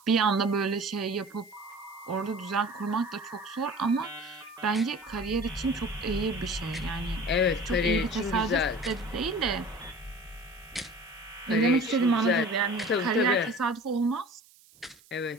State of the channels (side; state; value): right; noise; hiss, 27 dB below the sound